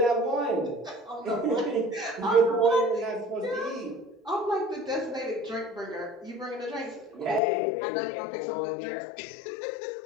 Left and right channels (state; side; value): drops out; right; at 7.4 s